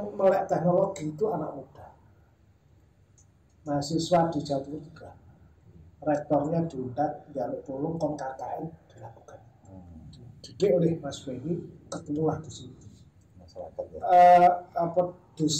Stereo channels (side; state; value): both; identical; correlation 1.00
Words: melek teknologi itu anak muda. Mahasiswa di Jawa Timur juga. Rektornya diundang, dialog tolong KKN dilakukan. Dididik oleh Mas Benny, ketemulah di sini. Masyarakat